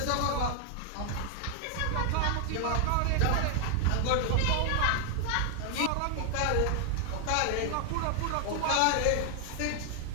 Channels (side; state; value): both; different; correlation 0.00